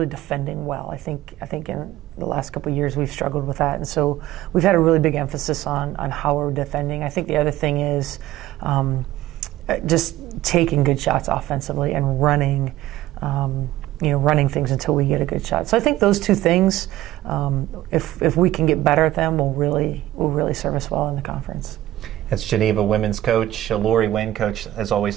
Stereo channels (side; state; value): left; quieter; 14.9 dB